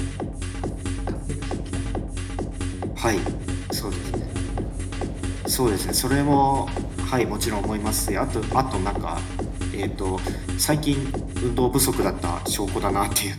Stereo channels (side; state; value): both; identical; correlation 1.00